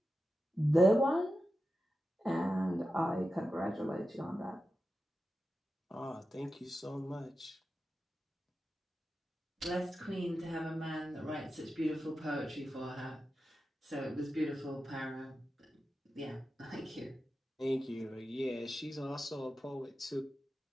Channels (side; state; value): both; normal; correlation 0.91